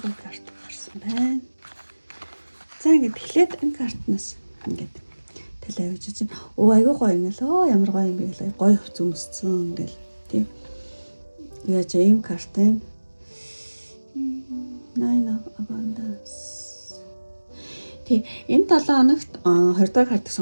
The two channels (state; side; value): inverted; both; correlation -1.00